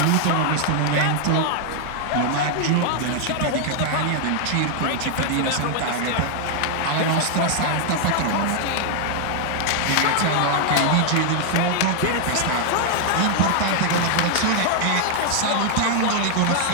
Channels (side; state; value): both; different; correlation 0.00